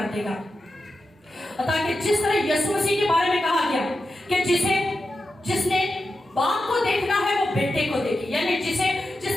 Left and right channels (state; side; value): normal; both; correlation 0.90